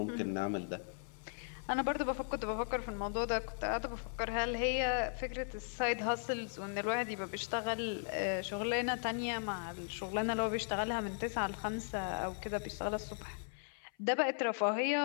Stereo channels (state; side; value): silent; right; 53 dB below the other